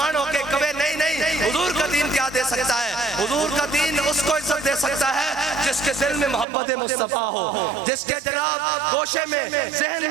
ہو کے کبھی نہیں حضور کا دین کیا دے سکتا ہے. حضور کا دین اس کو عزت دے سکتا ہے جس کے دل میں محبت مصطفیٰ ہو, جس کے جناب گوشے میں ذہن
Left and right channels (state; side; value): drops out; left; at 6.5 s